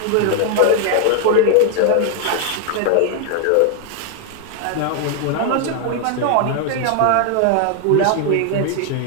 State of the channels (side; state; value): both; different; correlation 0.00